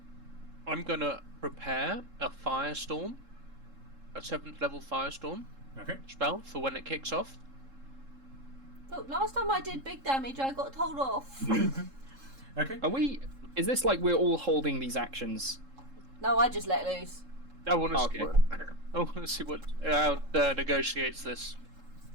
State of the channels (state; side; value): late; left; 3.7 ms